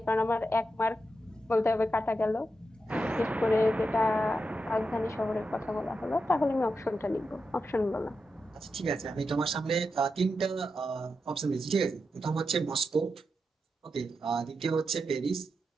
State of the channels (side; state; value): both; normal; correlation 0.87